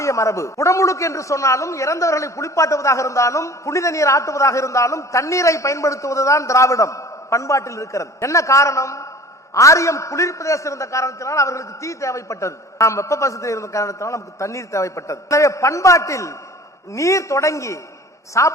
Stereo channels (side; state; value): both; normal; correlation 0.44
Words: மரபு. குடமுழுக்கு என்று சொன்னாலும், இறந்தவர்களை குளிப்பாட்டுவதாக இருந்தாலும், புனித நீர் ஆட்டுவதாக இருந்தாலும், தண்ணீரை பயன்படுத்துவதுதான் திராவிடம் பண்பாட்டில் இருக்கிறது. என்ன காரணம்? ஆரியம் குளிர் பிரதேசம் இருந்த காரணத்தினால் அவர்களுக்கு தீ தேவைப்பட்டது, நாம் வெப்ப பசத்தில் இருந்த காரணத்தினால் நமக்கு தண்ணீர் தேவைப்பட்டது. எனவே பண்பாட்டில் நீர் தொடங்கி